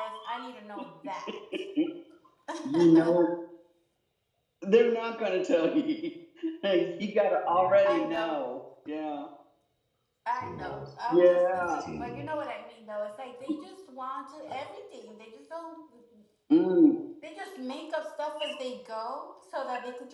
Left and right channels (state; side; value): identical; both; correlation 1.00